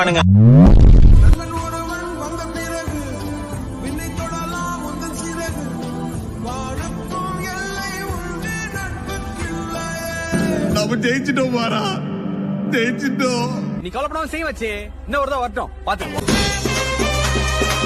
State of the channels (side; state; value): both; identical; correlation 1.00